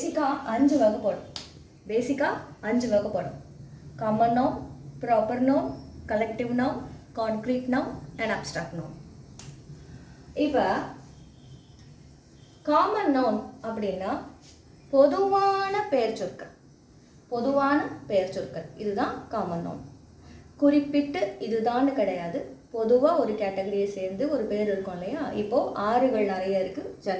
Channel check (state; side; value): identical; both; correlation 1.00